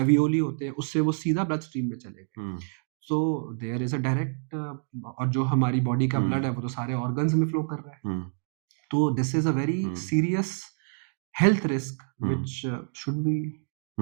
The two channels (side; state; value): left; silent; 60 dB below the other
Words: होते हैं उससे वो सीधा ब्लड स्ट्रीम में चले गए। हम्म, so there is a direct, और जो हमारी बॉडी का ब्लड है वो तो सारे ऑर्गन्स में फ्लो कर रहा है। हम्म, तो this is a very hmm, serious health risk hmm, which should be